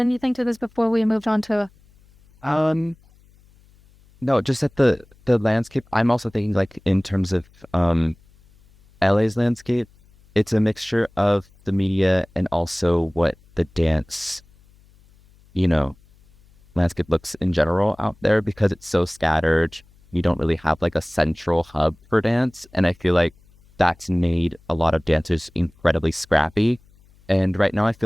to this before we moved on to? No, just at the landscape. I'm also thinking, like, in terms of LA's landscape, it's a mixture of the media and also what the dance, landscape looks in general out there, because it's so scattered. You don't really have like a central hub for dance, and I feel like that's made a lot of dancers incredibly scrappy. And right now I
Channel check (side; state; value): left; noise; hum, 30 dB below the sound